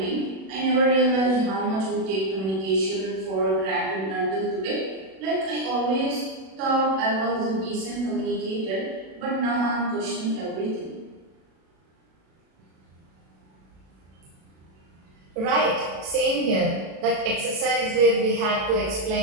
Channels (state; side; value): late; left; 37 ms